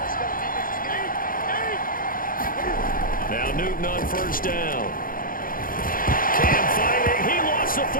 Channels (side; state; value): right; late; 0.41 ms